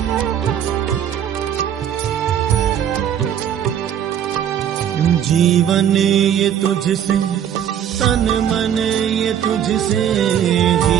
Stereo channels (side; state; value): left; quieter; 9.5 dB